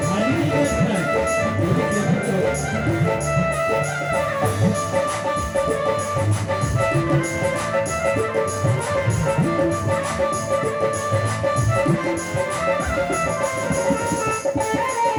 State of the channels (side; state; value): both; identical; correlation 1.00